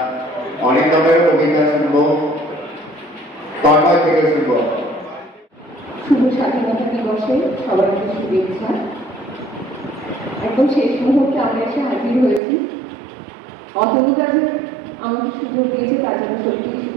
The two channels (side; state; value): left; drops out; at 12.4 s